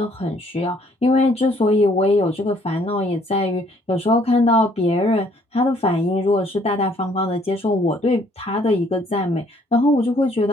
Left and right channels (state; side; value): normal; both; correlation 0.63